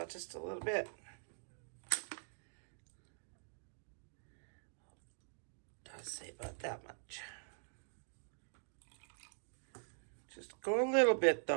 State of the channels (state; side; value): silent; left; digital silence